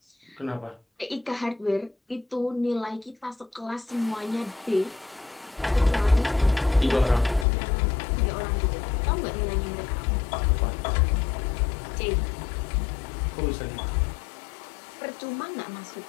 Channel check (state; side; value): drops out; right; at 7.5 s